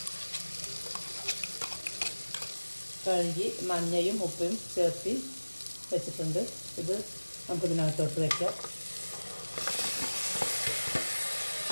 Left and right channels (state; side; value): inverted; both; correlation -1.00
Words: കഴുകി മഞ്ഞയും ഉപ്പും ചേർത്തി വെച്ചിട്ടുണ്ട്. ഇത് നമുക്കിതിനകത്തോട്ട് വയ്ക്കാം.